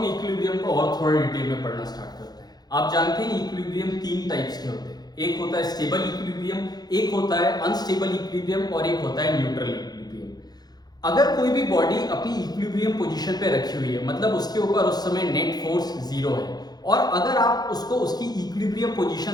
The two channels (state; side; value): late; right; 0.19 ms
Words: इक्विलिब्रियम को और थोड़ा डिटेल में पढ़ना स्टार्ट करते हैं। आप जानते हैं इक्विलिब्रियम 3 टाइप्स के होते हैं, एक होता है स्टेबल इक्विलिब्रियम, एक होता है अनस्टेबल इक्विलिब्रियम, और एक होता है न्यूट्रल इक्विलिब्रियम। अगर कोई भी बॉडी अपनी इक्विलिब्रियम पोजीशन पे रखी हुई है, मतलब उसके ऊपर उस समय नेट फोर्स 0 है, और अगर आप उसको उसकी इक्विलिब्रियम